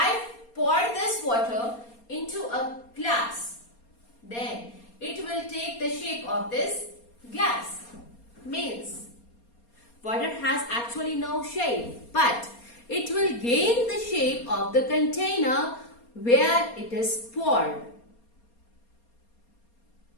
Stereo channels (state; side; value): late; right; 4.3 ms